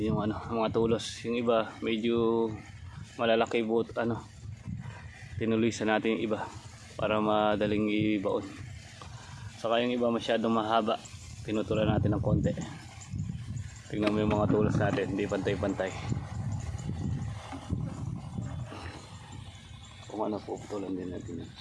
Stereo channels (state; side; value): identical; both; correlation 1.00